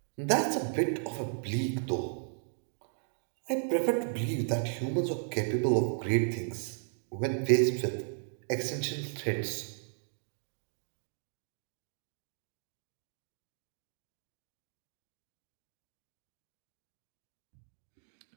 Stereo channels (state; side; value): silent; left; digital silence